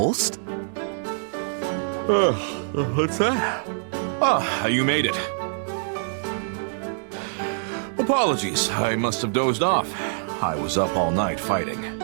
What's that? Ah, you made it. Apologies, I must have dozed off. I was up all night fighting.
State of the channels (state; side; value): silent; left; digital silence